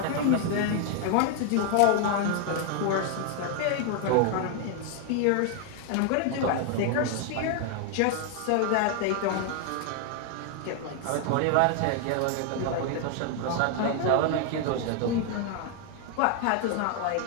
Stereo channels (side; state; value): both; different; correlation 0.00